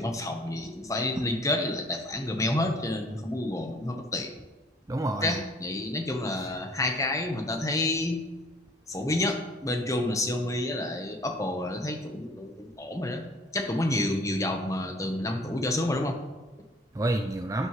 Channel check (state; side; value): normal; both; correlation 0.54